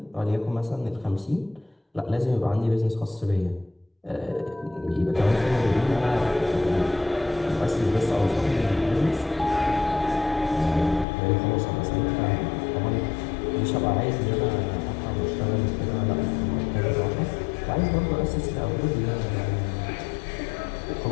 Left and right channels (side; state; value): right; drops out; at 11.1 s